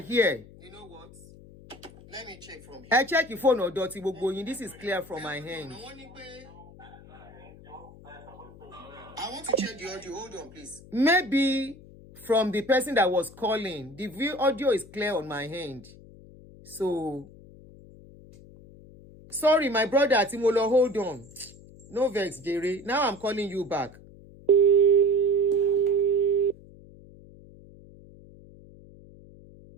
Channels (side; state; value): left; noise; hum, 21 dB below the sound